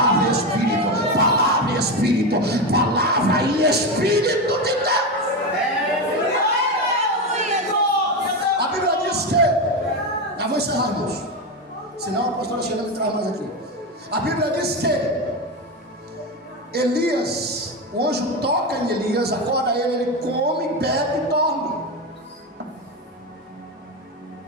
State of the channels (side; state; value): both; normal; correlation 0.15